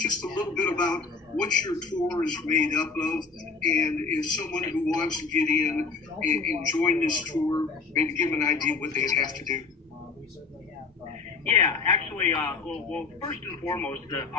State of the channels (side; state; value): right; quieter; 4.5 dB